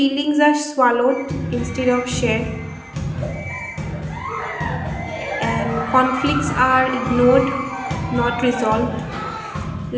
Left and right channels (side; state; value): both; identical; correlation 1.00